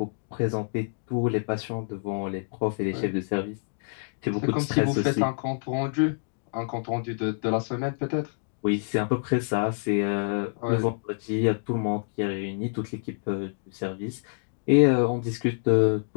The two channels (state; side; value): silent; right; digital silence